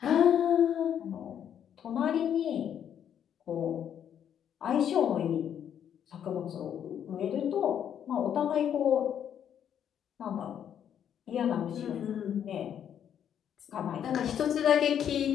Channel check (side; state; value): right; quieter; 9.2 dB